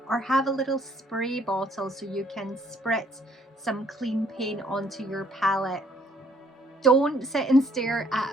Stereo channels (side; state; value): both; normal; correlation 0.64